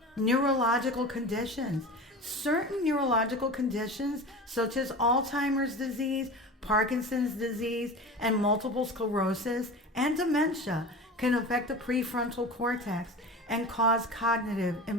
Neurological conditions. Certain neurological conditions, such as Alzheimer's disease, Parkinson's disease, and multiple sclerosis and dementia, can affect the prefrontal cortex and cause cognitive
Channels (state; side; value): normal; both; correlation 0.32